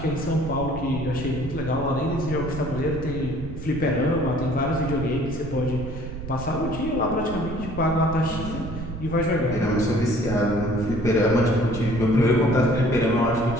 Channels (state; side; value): noise; right; rumble, 9 dB below the sound